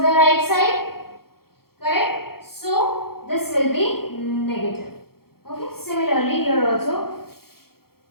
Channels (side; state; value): right; late; 0.94 ms